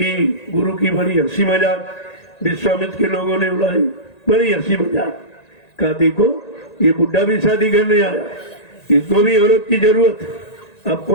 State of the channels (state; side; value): late; right; 1.9 ms